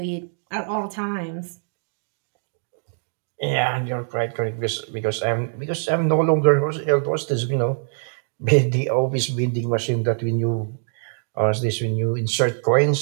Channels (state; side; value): silent; left; digital silence